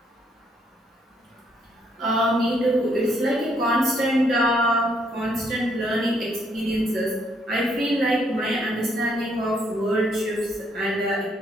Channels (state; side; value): normal; both; correlation 0.71